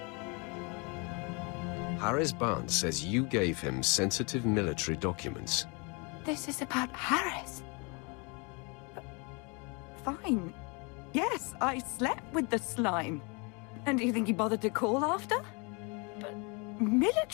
Harris Barnes says you gave him sensitive military documents. This is about Harris. Fine. Yes, I slept with the slime. And do you think he bothered to call after? But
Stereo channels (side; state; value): right; quieter; 31.3 dB